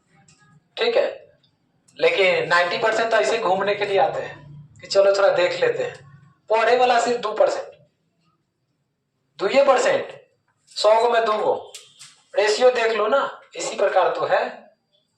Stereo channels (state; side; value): identical; both; correlation 1.00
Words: ठीक है, लेकिन 90% तो ऐसे घूमने के लिए आते हैं कि चलो थोड़ा देख लेते हैं। पढ़े वाला सिर्फ 2%, 2% 100 में 2 रेशियो देख लो ना, इसी प्रकार तो है।